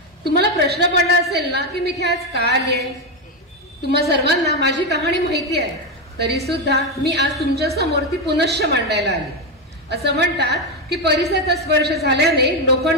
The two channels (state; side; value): normal; both; correlation 0.08